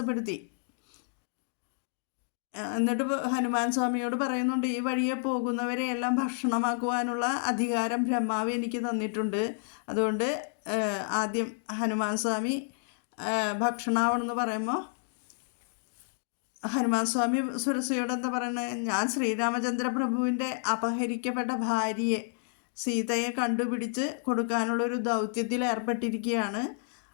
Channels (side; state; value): right; silent; digital silence